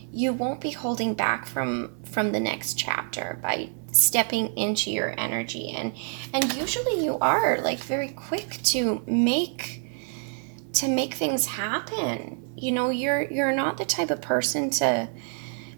be holding back from the next chapter by stepping into your energy, and usually you are very quick to make things happen. You're not the type of person to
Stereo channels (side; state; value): left; silent; 60 dB below the other